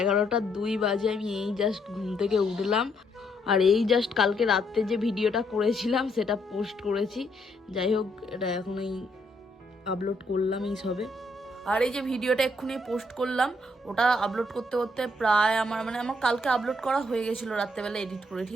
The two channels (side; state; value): both; normal; correlation 0.72